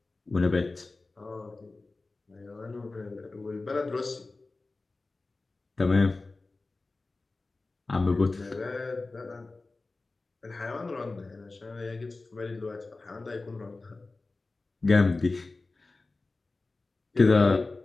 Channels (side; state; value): right; quieter; 3.4 dB